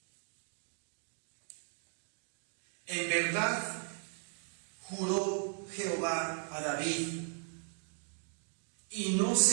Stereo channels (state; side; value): silent; left; 53 dB below the other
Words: En verdad juró Jehová a David y no